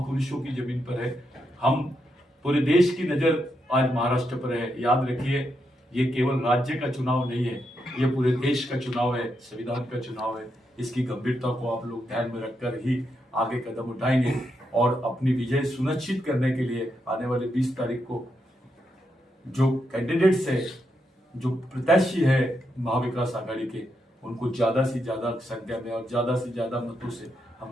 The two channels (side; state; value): both; normal; correlation 0.82